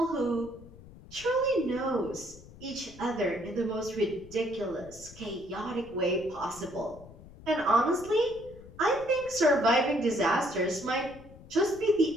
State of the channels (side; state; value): left; noise; rumble, 19 dB below the sound